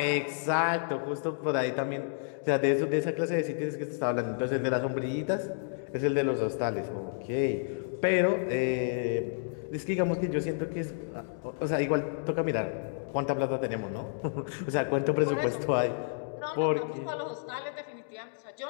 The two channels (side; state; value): right; silent; digital silence